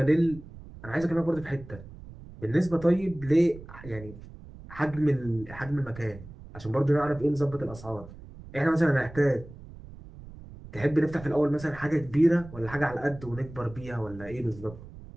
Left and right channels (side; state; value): right; noise; rumble, 16 dB below the sound